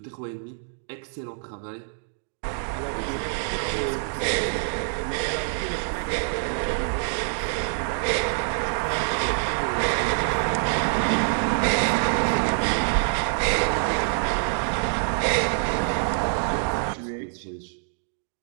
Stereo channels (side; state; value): left; silent; digital silence